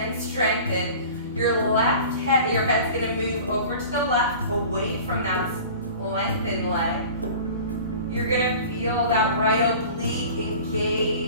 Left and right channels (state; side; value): inverted; both; correlation -0.41